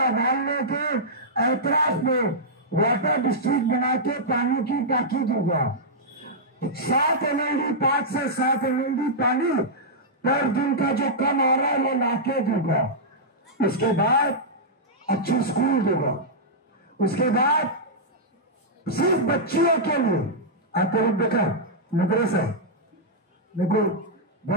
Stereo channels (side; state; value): both; normal; correlation -0.10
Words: के एतराफ में वाटर डिस्ट्रिक्ट बना के पानी की टाकी दूंगा। 7 MLD 5 से 7 MLD पानी पर दिन का जो कम आ रहा है वो लाके दूंगा। उसके बाद अच्छी स्कूल दूंगा। उसके बाद सिर्फ बच्चियों के लिए आपको देखा मदरसा, मेरे को